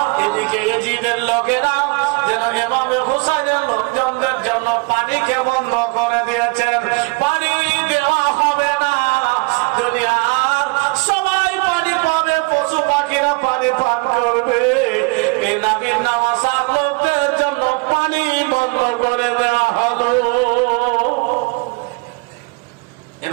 এদিকে এজিদের লোকেরা যেন ইমামে হুসাইনের লোকজনদের জন্য পানিকে বন্ধ করে দিয়েছেন পানি দেওয়া হবে না দুনিয়ার সবাই পানি পাবে পশু পাখিরা পানি পান করবে এই নবীর নামাজার লোকদের জন্য পানি বন্ধ করে দেওয়া হলো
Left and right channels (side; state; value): left; quieter; 28.6 dB